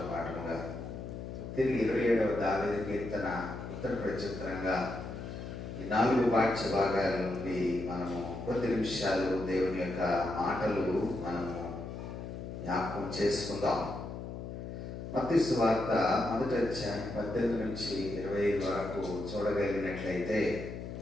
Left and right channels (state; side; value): noise; left; hum, 8 dB below the sound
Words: పాఠముగా, తిరిగి 27వ దావీదు కీర్తన ఉత్తర ప్రత్యుత్తరంగా, ఈ 4 పాఠ్య భాగాల నుండి మనము కొద్ది నిమిషాలు దేవుని యొక్క మాటలు మనము జ్ఞాపకం చేసుకుందాం. మత్తయి సువార్త 1వ అధ్యాయం 18 నుంచి 25 వరకు చూడగలిగినట్లయితే,